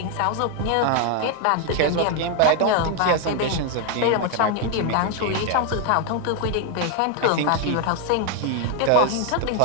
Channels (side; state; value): both; different; correlation 0.01